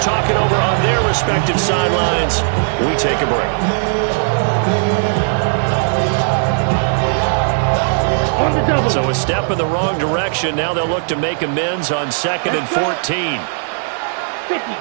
it over on their respective sidelines, we take a break. On the double. So a step in the wrong direction. Now they'll look to make amends on 2nd and 14. 50,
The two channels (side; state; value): left; silent; 60 dB below the other